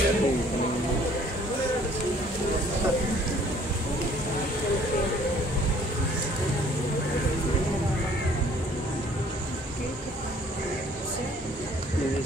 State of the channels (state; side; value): normal; both; correlation 0.57